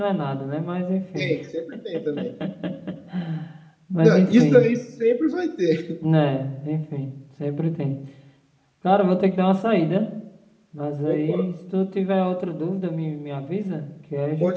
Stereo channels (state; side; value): identical; both; correlation 1.00